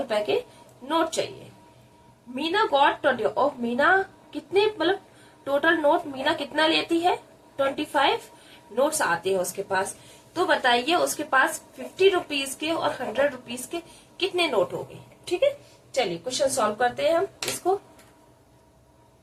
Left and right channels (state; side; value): identical; both; correlation 1.00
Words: के नोट चाहिए। मीना गॉट 20, और मीना कितने, मतलब टोटल नोट मीना कितना लेती है, 25 नोट्स आते हैं उसके पास। तो बताइए उसके पास 50 रुपीज के और 100 रुपीज के कितने नोट हो गए। ठीक है, चलिए क्वेश्चन सॉल्व करते हैं हम इसको।